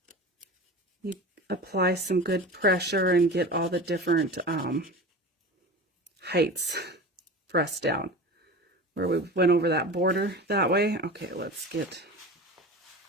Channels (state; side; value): normal; both; correlation 0.32